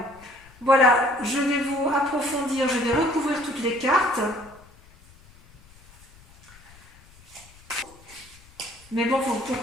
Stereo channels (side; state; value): left; noise; rumble, 25 dB below the sound